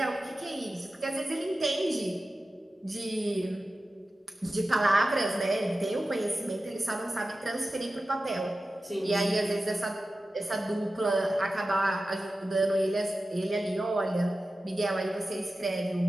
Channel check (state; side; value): normal; both; correlation 0.94